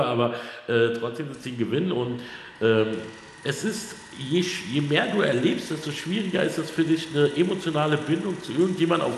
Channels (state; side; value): identical; both; correlation 1.00